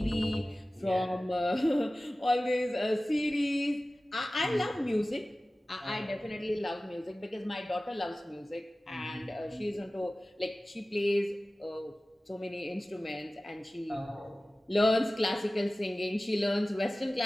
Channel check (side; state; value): both; normal; correlation 0.97